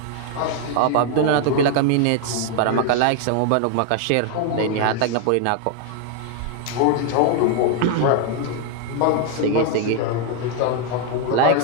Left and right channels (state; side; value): different; both; correlation 0.00